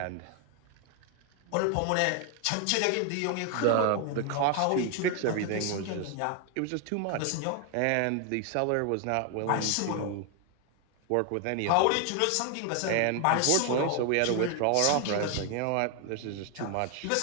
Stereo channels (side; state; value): both; different; correlation 0.01